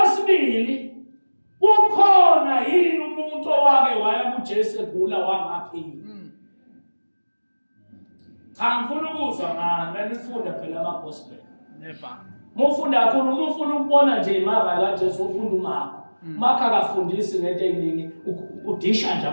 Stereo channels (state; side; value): inverted; both; correlation -1.00